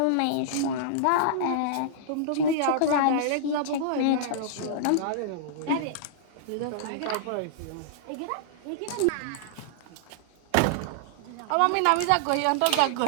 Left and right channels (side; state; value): both; different; correlation -0.02